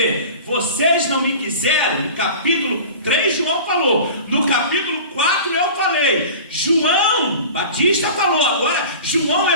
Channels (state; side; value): inverted; both; correlation -0.37